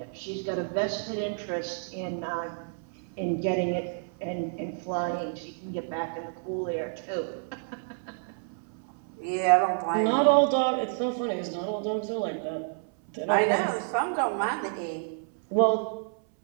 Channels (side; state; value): left; silent; 58 dB below the other